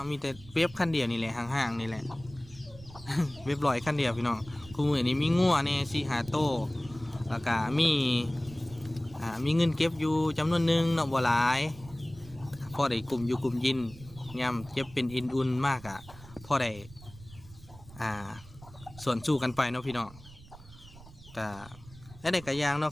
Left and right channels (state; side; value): noise; right; rumble, 19 dB below the sound